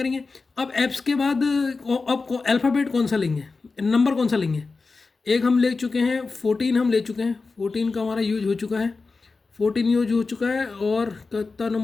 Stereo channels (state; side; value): quieter; right; 4.1 dB